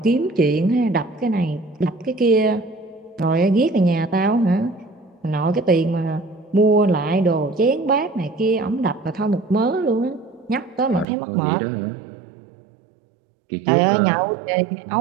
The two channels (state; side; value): drops out; left; at 11.1 s